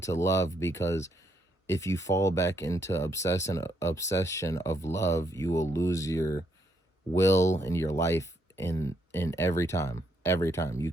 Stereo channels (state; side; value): normal; both; correlation 0.75